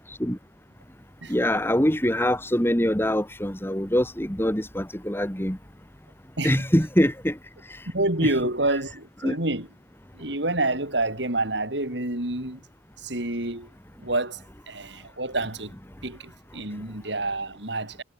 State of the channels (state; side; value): normal; both; correlation 0.48